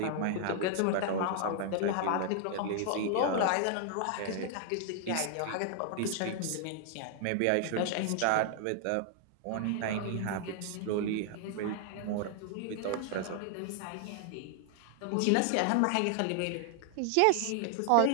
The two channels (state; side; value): different; both; correlation 0.00